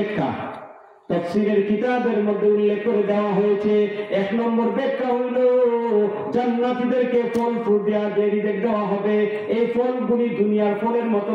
তাফসীরের কিতাবের মধ্যে উল্লেখ করে দেওয়া হয়েছে, এক নম্বর ব্যাখ্যা হইল জান্নাতীদেরকে ফল ফ্রুট দেওয়া হবে, এই ফলগুলি দুনিয়ার ফলের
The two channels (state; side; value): identical; both; correlation 1.00